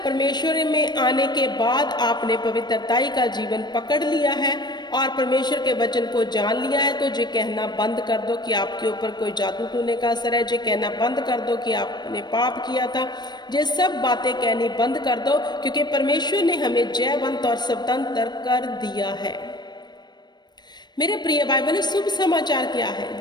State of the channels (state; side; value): late; right; 0.21 ms